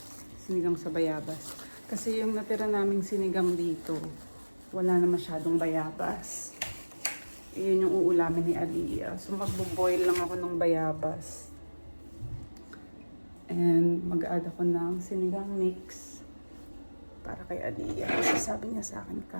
Sinigang sa bayabas. Kasi yung natira naming sinigang dito, wala na masyadong bayabas. Iyon yung uulamin ni Aliyah. So, magbo-boil lang ako ng bayabas. And mag-add ako ng sinigang mix para kay Aliyah. Kasi sabi niya sa akin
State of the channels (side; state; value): both; inverted; correlation -1.00